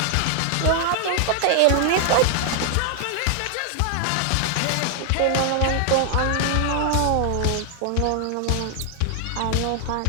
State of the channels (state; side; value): different; both; correlation 0.00